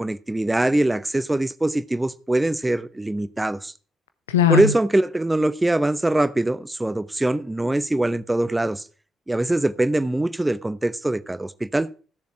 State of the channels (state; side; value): normal; both; correlation 0.85